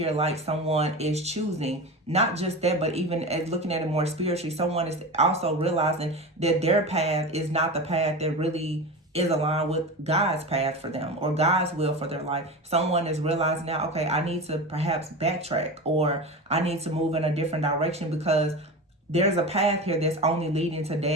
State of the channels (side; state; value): both; normal; correlation 0.27